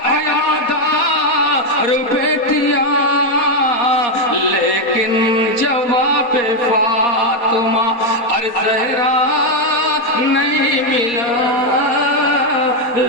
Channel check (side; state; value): right; late; 4.2 ms